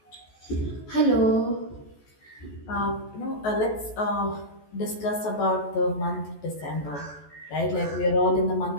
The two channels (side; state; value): right; late; 14 ms